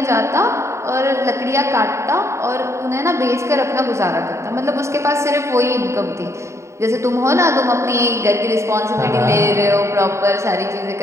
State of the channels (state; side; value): late; left; 0.14 ms